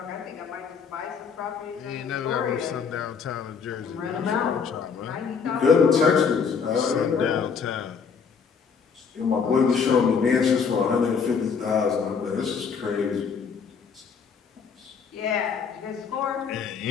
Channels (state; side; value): quieter; right; 6.1 dB